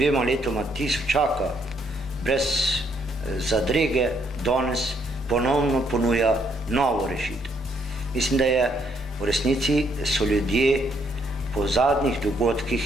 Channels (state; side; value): normal; both; correlation 0.71